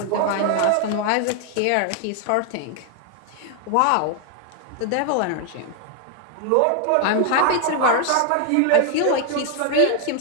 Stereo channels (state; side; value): different; both; correlation 0.00